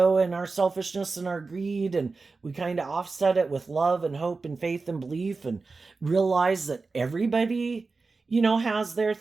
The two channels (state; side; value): quieter; left; 4.0 dB